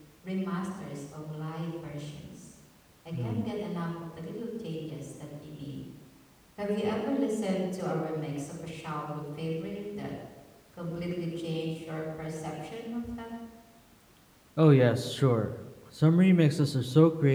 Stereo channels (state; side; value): identical; both; correlation 1.00